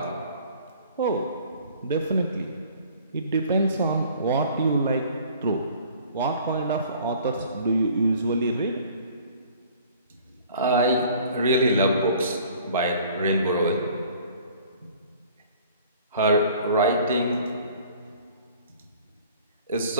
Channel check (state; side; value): inverted; both; correlation -0.52